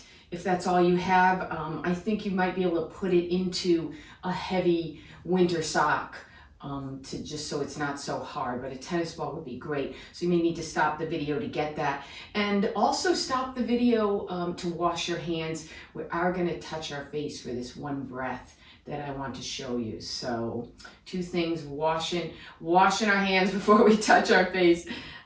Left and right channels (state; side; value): identical; both; correlation 1.00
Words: if that's all you have. I think you might be able to put it into a heavy winter sock to just so it's not so hard, but a tennis ball would be great. So you may need to stop the video to get that. And also stop the video to wash your hands. We are going to touch our face for this one breath that I want to show you. So two things, washing our hands before we touch our face.